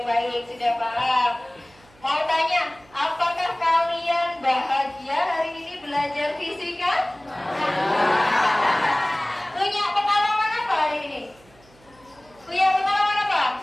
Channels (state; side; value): noise; right; hum, 28 dB below the sound